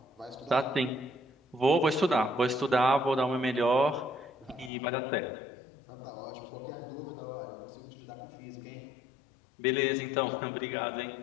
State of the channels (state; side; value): drops out; right; at 4.7 s